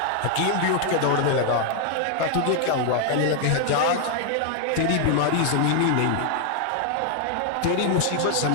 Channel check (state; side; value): different; both; correlation 0.00